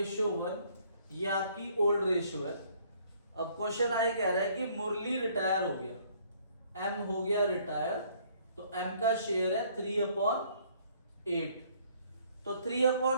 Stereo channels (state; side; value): inverted; both; correlation -0.62